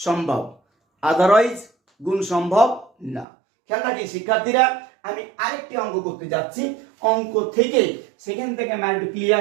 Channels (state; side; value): drops out; left; at 3.2 s